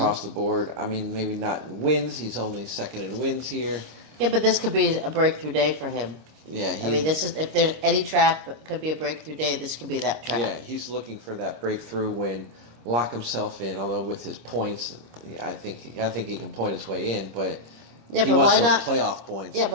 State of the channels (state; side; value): late; left; 26 ms